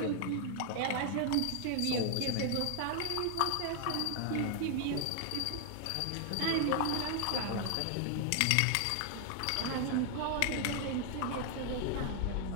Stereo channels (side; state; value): both; different; correlation 0.00